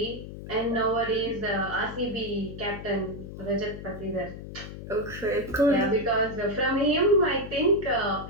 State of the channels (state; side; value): noise; left; hum, 11 dB below the sound